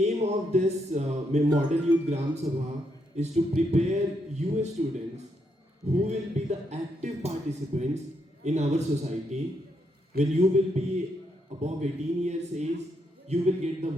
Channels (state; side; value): normal; both; correlation 0.78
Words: of this Model Youth Gram Sabha is to prepare you students who will be the active participants in our society. When you will be above 18 years age, you will get the